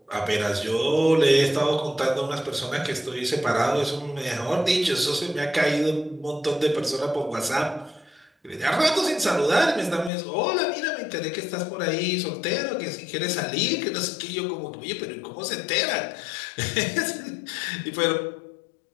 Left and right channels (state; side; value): drops out; right; at 10.1 s